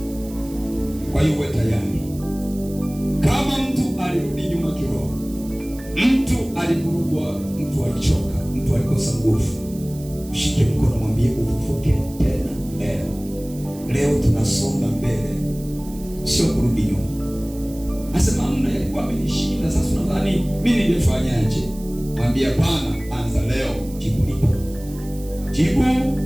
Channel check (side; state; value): right; noise; hiss, 20 dB below the sound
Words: Kwa hiyo uwe tayari. Kama mtu alirudi nyuma kiroho, mtu alivurugwa, mtu alichoka, mtu alikosa nguvu, mshike mkono, mwambie ufufuke tena leo. Leo tunasonga mbele, sio kurudi nyuma. Asema mna yalikuwa amenishinda, sasa unadhani mimi ningefanyaje? Mwambie hapana, anza leo, jibu lipo. Jibu